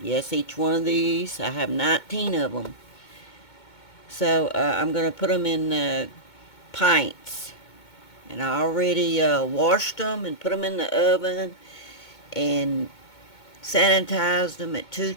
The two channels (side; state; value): right; late; 2.2 ms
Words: each one of these, I have 19 of them. So I'm going to put them in pints. And I already washed them and put them in the oven and sanitized them at